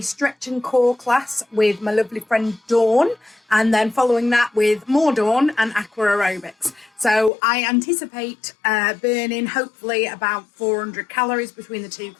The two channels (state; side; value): drops out; right; at 7.3 s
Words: and core class with my lovely friend Dawn, and then following that with more Dawn and aqua aerobics. So I anticipate burning hopefully about 400 calories between the two